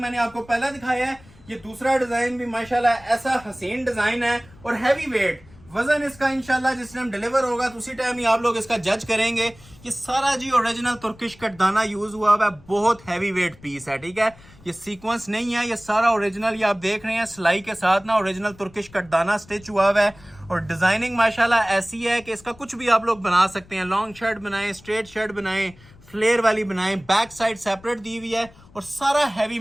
आपको पहला दिखाया है, ये दूसरा डिजाइन भी माशाल्लाह ऐसा हसीन डिजाइन है और हैवी वेट। वजन इसका इंशाल्लाह जिस टाइम डिलीवर होगा तो उसी टाइम ही आप लोग इसका जज करेंगे। ये सारा जी ओरिजिनल तुर्किश कटदाना यूज हुआ हुआ है, बहुत हैवी वेट पीस है, ठीक है। ये सीक्वेंस नहीं है, ये सारा ओरिजिनल, ये आप देख रहे हैं सिलाई के साथ ना ओरिजिनल तुर्किश कटदाना स्टिच हुआ हुआ है। और डिजाइनिंग माशाल्लाह ऐसी है कि इसका कुछ भी आप लोग बना सकते हैं। लॉन्ग शर्ट बनाएं, स्ट्रेट शर्ट बनाएं, फ्लेयर वाली बनाएं, बैक साइड सेपरेट दी हुई है और सारा हैवी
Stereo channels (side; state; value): left; noise; rumble, 24 dB below the sound